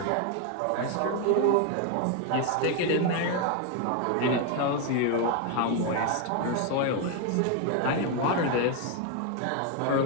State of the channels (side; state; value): both; different; correlation 0.01